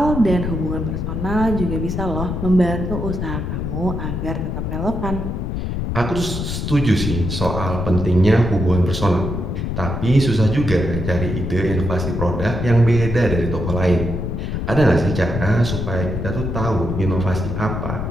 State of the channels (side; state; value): left; noise; rumble, 3 dB below the sound